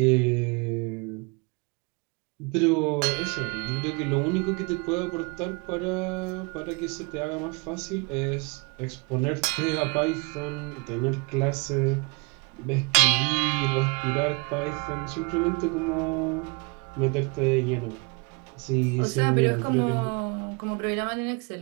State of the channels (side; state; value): left; quieter; 31.0 dB